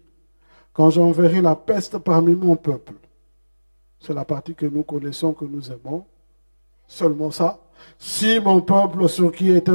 quand j'enverrai la peste parmi mon peuple. C'est la partie que nous connaissons, que nous aimons. Seulement ça. Si mon peuple sur qui est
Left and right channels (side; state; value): both; inverted; correlation -1.00